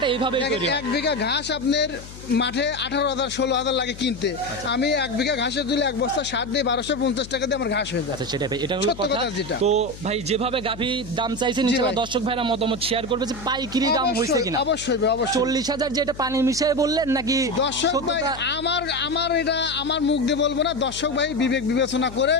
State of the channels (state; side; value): noise; left; hum, 15 dB below the sound